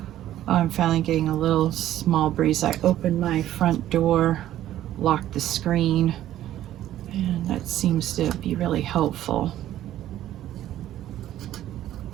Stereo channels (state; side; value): quieter; left; 12.8 dB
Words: Oh, I'm finally getting a little small breeze. I opened my front door, locked the screen, and that seems to be really helpful.